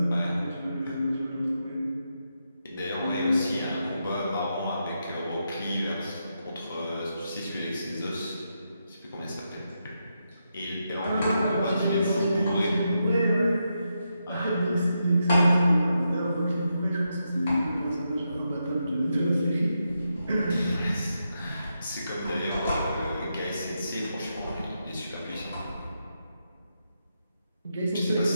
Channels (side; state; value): both; inverted; correlation -0.85